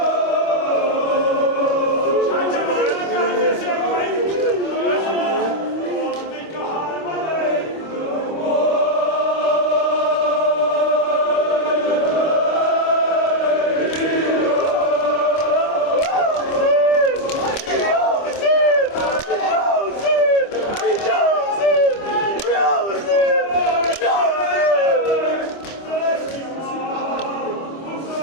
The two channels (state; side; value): late; right; 25 ms